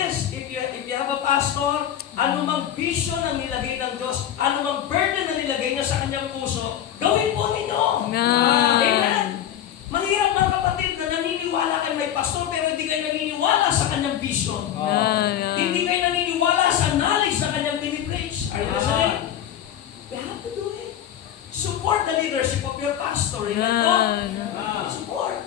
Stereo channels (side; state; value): right; quieter; 10.6 dB